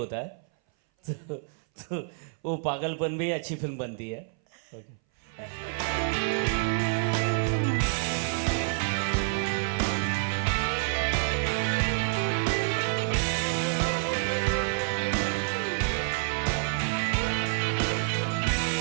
है. तो वो पागलपन भी अच्छी फिल्म बनती है.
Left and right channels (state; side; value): silent; left; 58 dB below the other